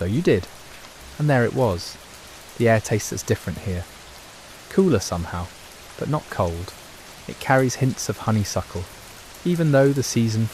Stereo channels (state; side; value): identical; both; correlation 1.00